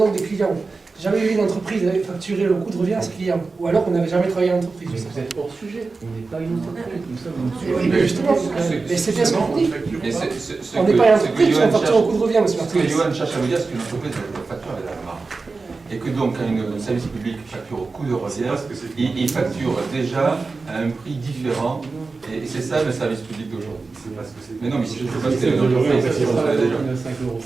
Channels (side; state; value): left; quieter; 4.0 dB